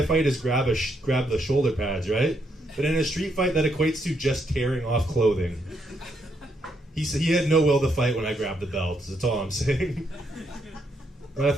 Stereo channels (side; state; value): both; normal; correlation 0.76